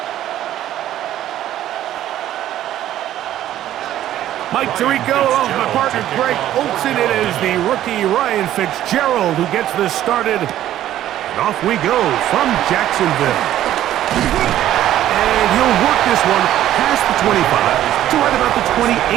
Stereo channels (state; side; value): quieter; left; 12.6 dB